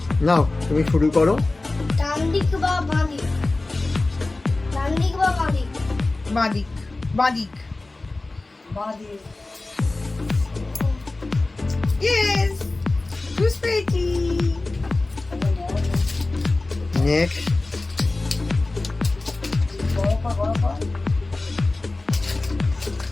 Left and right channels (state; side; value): quieter; right; 3.1 dB